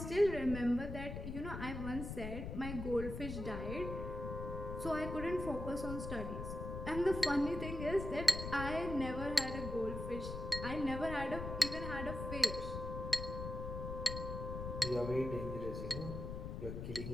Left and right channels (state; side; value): noise; left; rumble, 6 dB below the sound